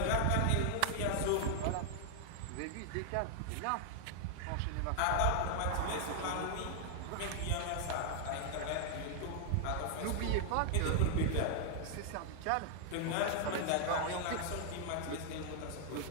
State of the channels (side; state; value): both; different; correlation 0.00